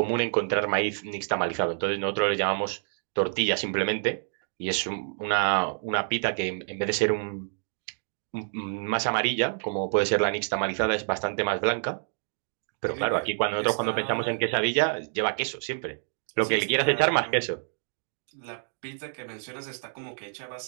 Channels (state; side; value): silent; left; digital silence